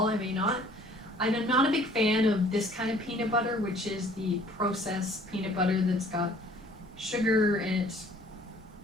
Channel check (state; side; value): normal; both; correlation 0.55